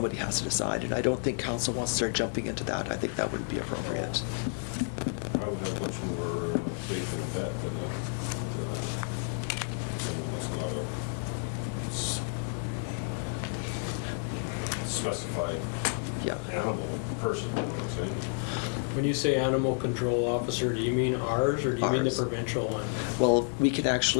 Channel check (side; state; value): right; silent; 55 dB below the other